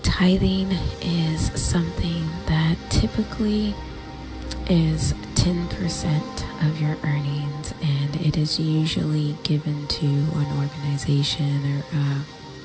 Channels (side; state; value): both; identical; correlation 1.00